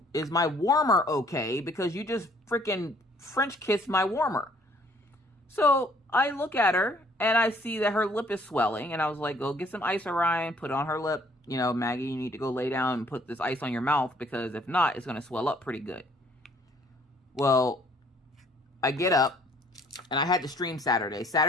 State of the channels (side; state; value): both; normal; correlation 0.61